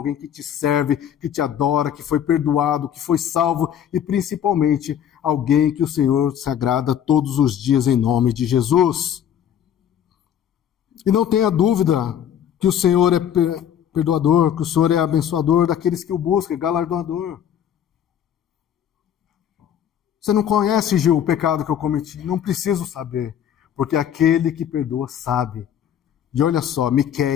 que Te serve, que Te adora, que foi perdoado, que foi salvo e principalmente alguém que o Senhor se agrada todos os dias em nome de Jesus. E não tenha dúvida que o Senhor é perdoador, que o Senhor é abençoador daqueles que o buscam, galardoador. Você não conhece, Gil, o pecado que eu cometi? Não preciso saber, porque aquele que perdoa sabe. E olha só,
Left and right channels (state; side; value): quieter; right; 9.5 dB